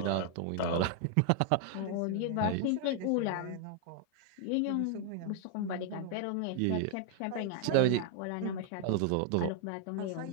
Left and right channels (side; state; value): both; different; correlation 0.00